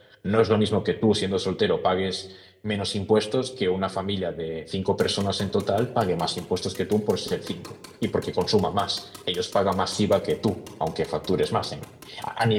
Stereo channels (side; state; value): both; identical; correlation 1.00